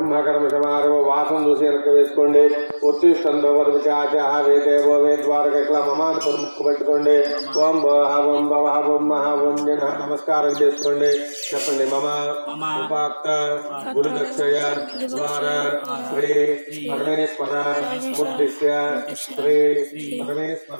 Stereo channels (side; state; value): both; inverted; correlation -1.00